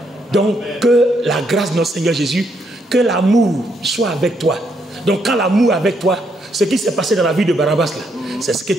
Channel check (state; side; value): normal; both; correlation 0.75